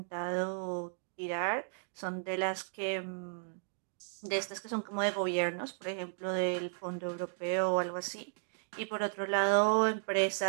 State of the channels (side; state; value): left; silent; digital silence